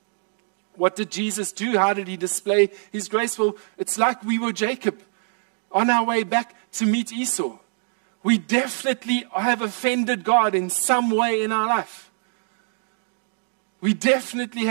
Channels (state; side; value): silent; left; digital silence